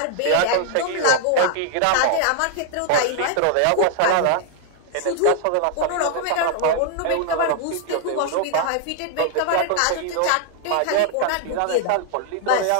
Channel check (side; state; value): both; different; correlation 0.00